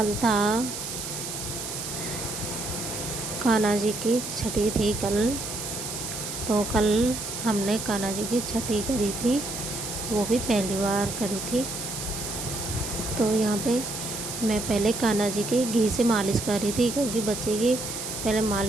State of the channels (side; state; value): right; noise; hiss, 6 dB below the sound